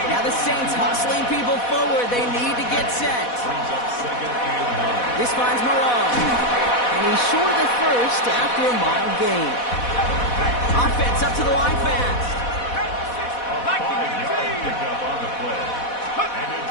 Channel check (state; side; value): late; right; 4.1 ms